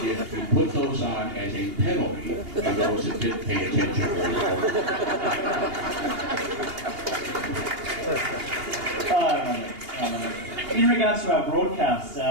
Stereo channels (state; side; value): late; left; 2.8 ms